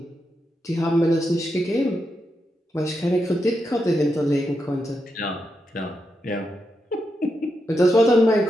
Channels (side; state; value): both; normal; correlation 0.85